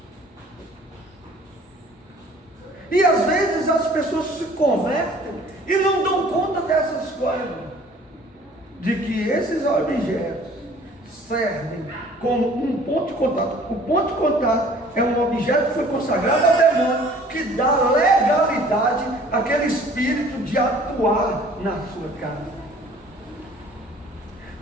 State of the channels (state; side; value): normal; both; correlation 0.52